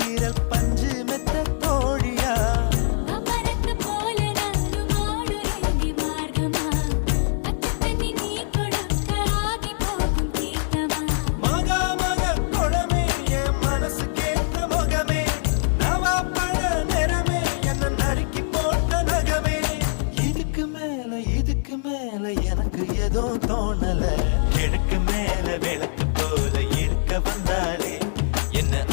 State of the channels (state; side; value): silent; right; 63 dB below the other